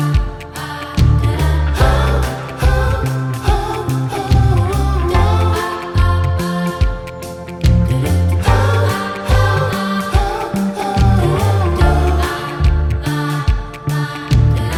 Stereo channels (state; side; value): identical; both; correlation 1.00